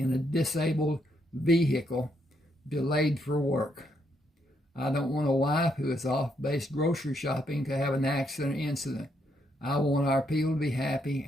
a disabled vehicle delayed for work. I don't want a wife who is off-base grocery shopping to have an accident or incident. I want our people to be happy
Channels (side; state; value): both; normal; correlation 0.76